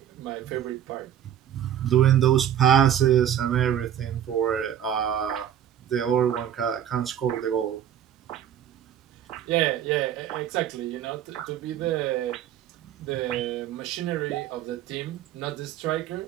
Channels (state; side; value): quieter; left; 10.2 dB